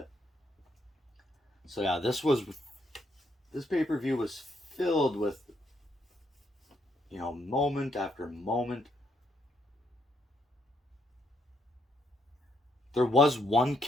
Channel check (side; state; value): both; normal; correlation 0.75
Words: So yeah, this pay-per-view was filled with moment after moment. There was one